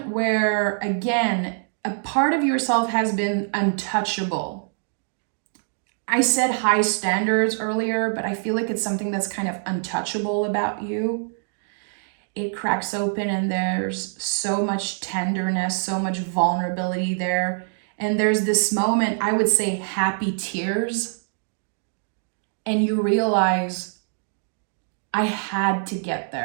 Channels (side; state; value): left; silent; digital silence